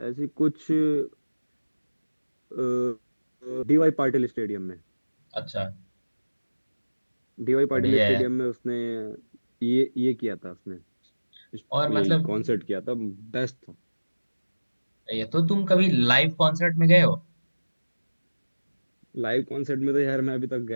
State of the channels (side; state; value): both; inverted; correlation -1.00